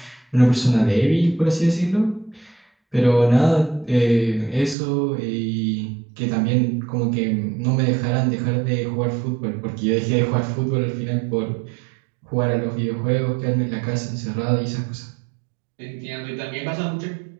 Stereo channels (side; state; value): left; drops out; at 4.8 s